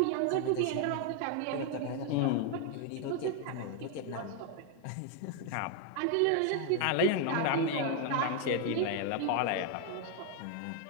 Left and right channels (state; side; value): different; both; correlation 0.00